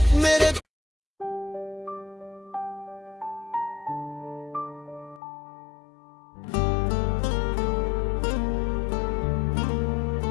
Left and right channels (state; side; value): drops out; right; at 5.2 s